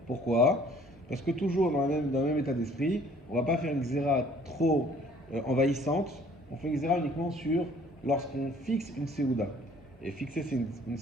Pourquoi? Parce que toujours dans le même état d'esprit, on ne va pas faire une xéra trop envahissante, on fait une xéra uniquement sur lorsqu'on fixe une séouda. Et fixer une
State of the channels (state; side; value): normal; both; correlation 0.56